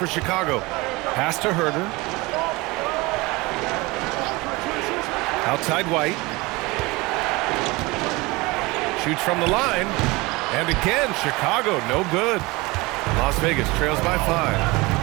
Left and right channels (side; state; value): left; quieter; 23.2 dB